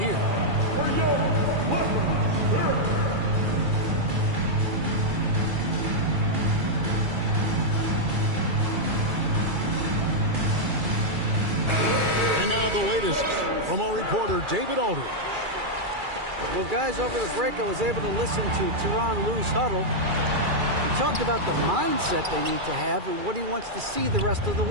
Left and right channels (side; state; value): left; late; 2.3 ms